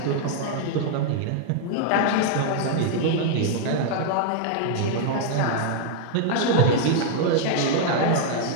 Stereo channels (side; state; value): both; different; correlation 0.00